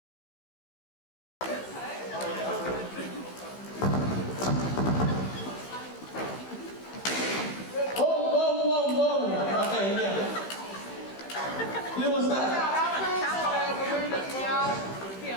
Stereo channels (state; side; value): late; right; 15 ms